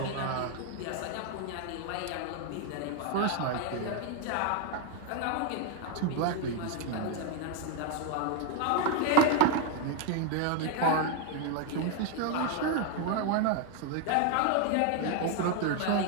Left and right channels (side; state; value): both; different; correlation 0.01